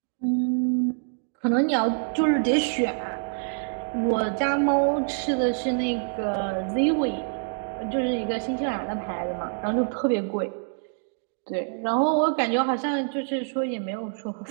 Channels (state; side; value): silent; left; digital silence